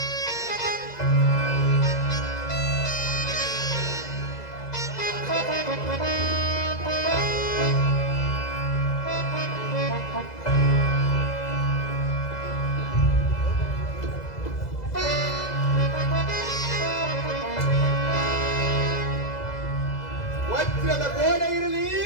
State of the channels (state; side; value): late; right; 2.0 ms